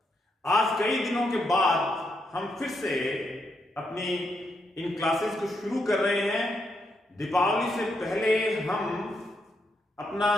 आज कई दिनों के बाद हम फिर से अपनी इन क्लासेस को शुरू कर रहे हैं। दीपावली से पहले हम अपना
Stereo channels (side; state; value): both; normal; correlation 0.80